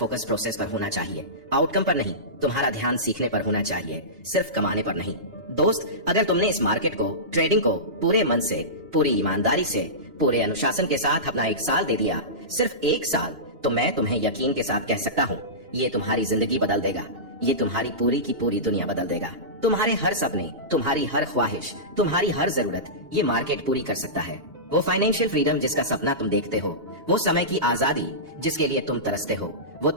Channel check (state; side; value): late; left; 2.8 ms